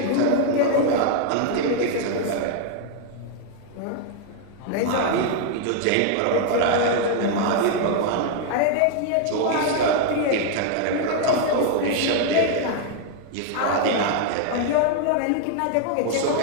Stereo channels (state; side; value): different; both; correlation 0.00